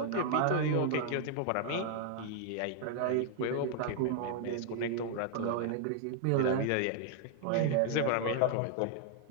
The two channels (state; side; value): different; both; correlation 0.00